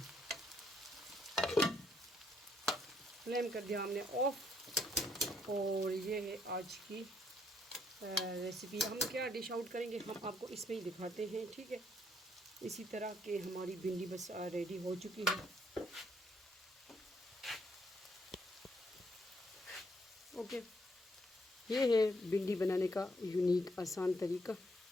फ्लेम कर दिया हमने ऑफ। और ये है आज की रेसिपी। हम क्या डिश आउट करेंगे हम आपको इसमें ही दिखाते हैं, ठीक है। इसी तरह के हमारी भिंडी बस रेडी हो चुकी है। ओके, ये है भिंडी बनाने का यूनिक आसान तरीका।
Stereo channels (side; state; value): both; normal; correlation 0.71